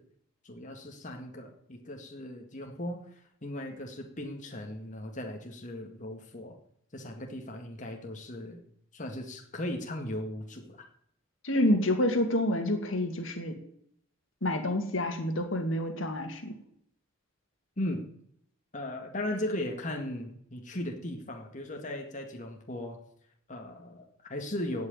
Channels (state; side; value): normal; both; correlation 0.37